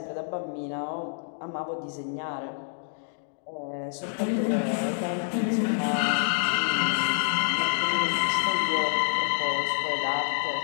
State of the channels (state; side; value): silent; right; digital silence